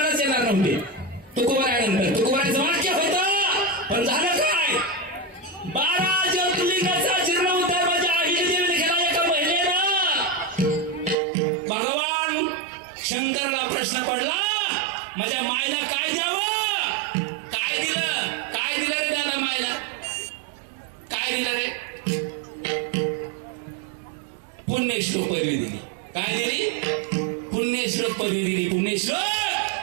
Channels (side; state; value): left; drops out; at 11.2 s